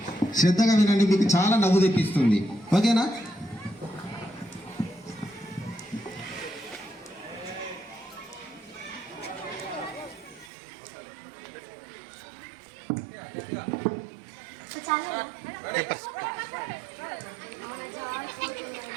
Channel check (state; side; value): drops out; left; at 10.5 s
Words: శ్రద్ధగా వినండి, మీకు చాలా నవ్వు తెప్పిస్తుంది. ఓకేనా?